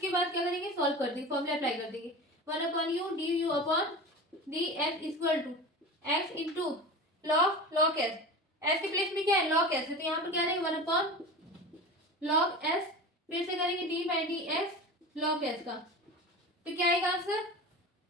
बाद क्या करेंगे, सॉल्व कर देंगे, फॉर्मूला अप्लाई कर देंगे। One upon u d you upon d x equal to x into log s. S के प्लेस में क्या है, लॉग एस है, तो यहाँ पर क्या रहेगा, वन अपॉन लॉग एस, फिर से करेंगे D by d x log s का। तो क्या आएगा आंसर,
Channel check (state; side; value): normal; both; correlation 0.31